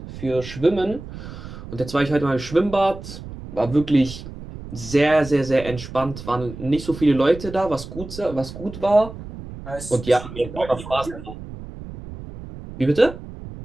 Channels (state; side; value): noise; right; rumble, 12 dB below the sound